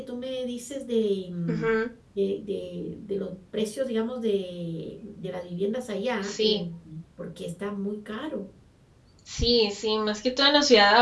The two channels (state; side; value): identical; both; correlation 1.00